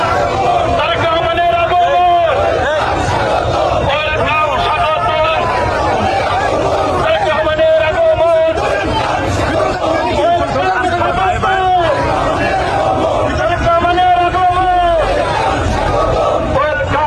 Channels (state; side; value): identical; both; correlation 1.00